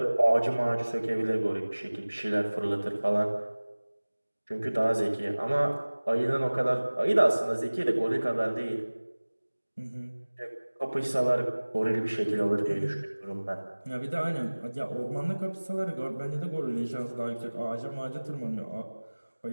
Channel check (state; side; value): inverted; both; correlation -1.00